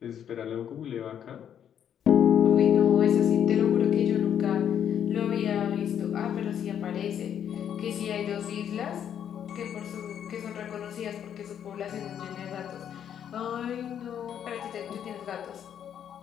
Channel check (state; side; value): quieter; right; 9.2 dB